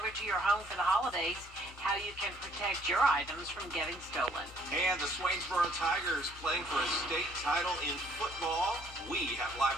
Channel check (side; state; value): both; normal; correlation 0.63